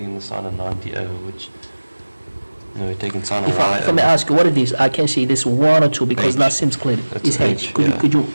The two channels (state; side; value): inverted; both; correlation -1.00